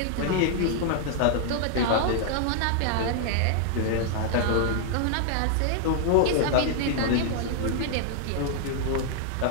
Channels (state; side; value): different; both; correlation -0.01